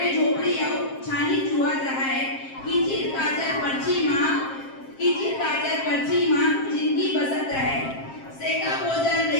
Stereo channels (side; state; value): right; late; 7.5 ms